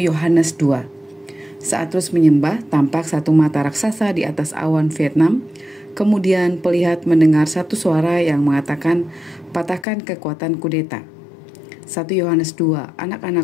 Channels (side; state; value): right; drops out; at 9.9 s